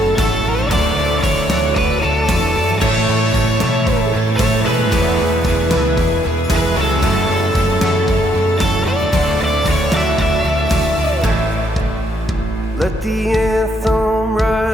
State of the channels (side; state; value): both; normal; correlation 0.73